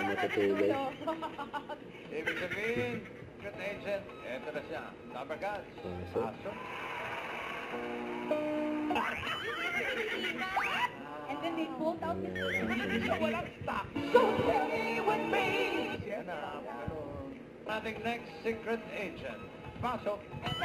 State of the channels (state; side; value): identical; both; correlation 1.00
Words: matutulog? Ibig sabihin, good agent, eto na siya. Number guns. Pasok. And then they pulled out the Walang stock. So stay with me. Siya na. Ating next secret agent. Pasok. Kasi